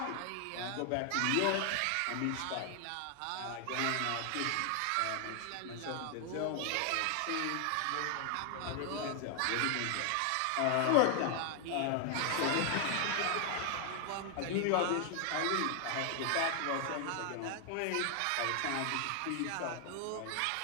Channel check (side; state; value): both; different; correlation 0.00